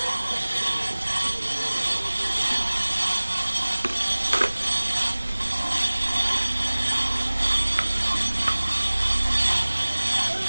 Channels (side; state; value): both; inverted; correlation -1.00